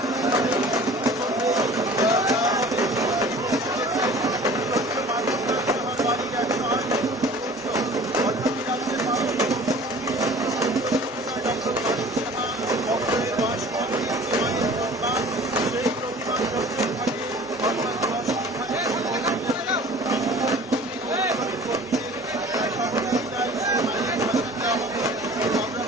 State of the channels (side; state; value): both; normal; correlation 0.45